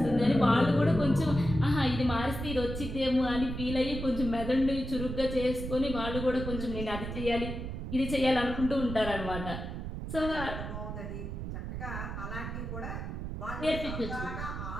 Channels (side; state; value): right; noise; rumble, 6 dB below the sound